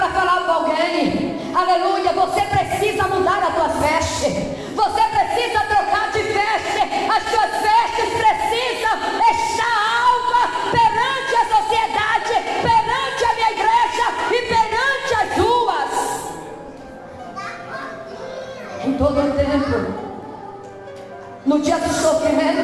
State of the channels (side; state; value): both; identical; correlation 1.00